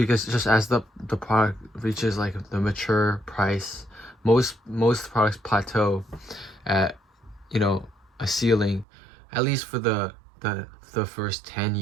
just as the product reaches like the mature price, most products plateau at a ceiling, at least for the first 10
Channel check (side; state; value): left; drops out; at 8.8 s